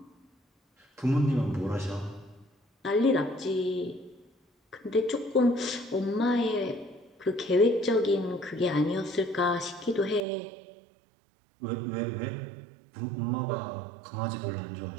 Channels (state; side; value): drops out; left; at 10.2 s